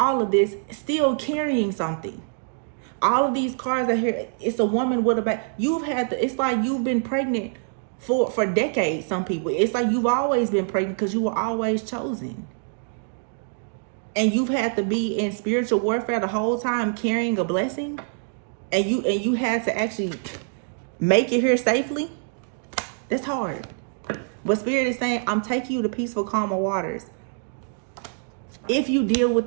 of this still carrying something. All of these cards are here. It's a woman with a baby. It's like you've been pregnant for decades. Some people, it's like you've always been pregnant because you were always chosen. And you've had to be in spiritual warfare the whole time carrying a blessing. And you had to actually make it here safely. That's hard. But Spirit is saying, I'm taking you to peaceful, calmer waters. If you deal with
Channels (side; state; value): left; silent; digital silence